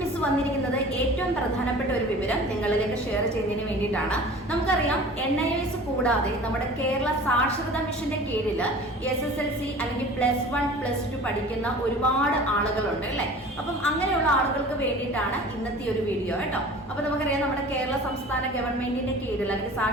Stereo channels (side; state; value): both; normal; correlation 0.42